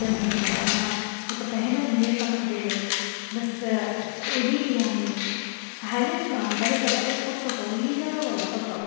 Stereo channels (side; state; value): right; silent; digital silence